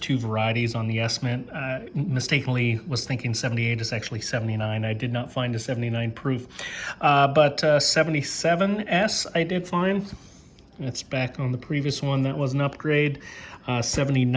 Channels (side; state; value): both; identical; correlation 1.00